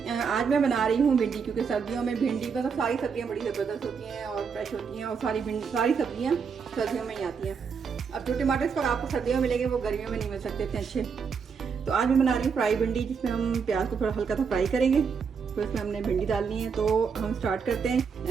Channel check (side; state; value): left; quieter; 6.0 dB